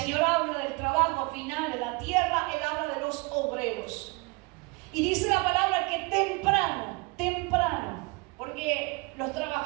habla del trabajo final en la tierra, Él habla de los obreros. Y dice la palabra que temprano, porque los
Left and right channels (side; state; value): left; quieter; 28.1 dB